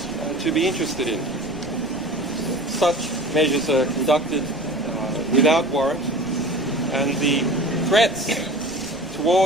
to be interested in. Such measures are conducted without warrant, and the threats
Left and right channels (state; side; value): noise; right; rumble, 19 dB below the sound